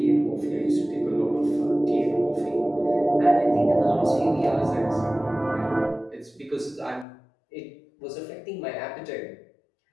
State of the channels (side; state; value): right; drops out; at 7.1 s